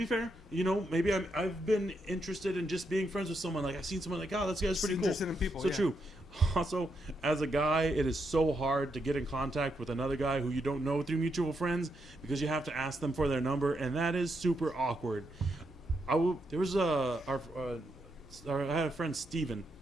fair, maybe I've been interested in just being friends with someone. Like I've seen someone like, oh, this guy's pretty cool. Interested in people, So yeah. true. Also, as a guy, it is so hard to get in contact with another guy who you don't know through mutual friends because you have to ask them for their number, and that is super awkward. I had a friend Steven,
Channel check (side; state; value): both; normal; correlation 0.81